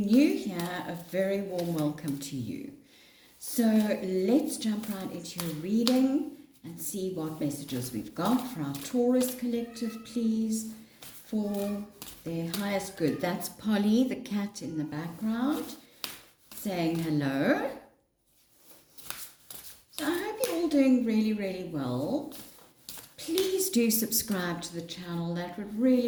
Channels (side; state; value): both; identical; correlation 1.00